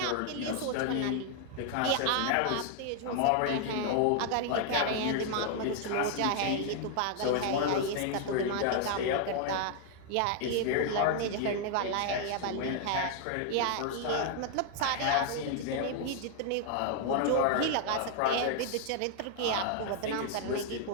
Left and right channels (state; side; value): different; both; correlation 0.00